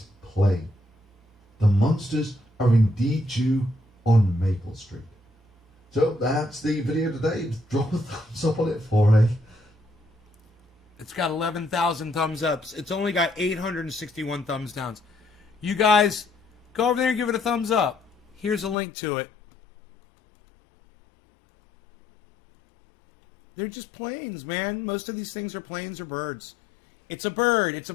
plane. The monsters are indeed due on Maple Street. So that's the video today. Drop a thumbs up on it for me. It's got 11,000 thumbs ups. It's only got 861 thumbs downs. You guys, go over there and give it a thumbs up. Here's a link to it. They're just planes, man. Most of these things are planes or birds. It's a bird. It's a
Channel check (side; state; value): right; drops out; at 18.8 s